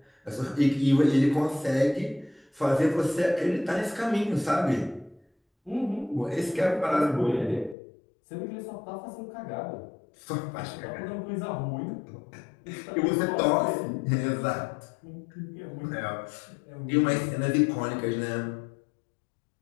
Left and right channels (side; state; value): right; drops out; at 7.8 s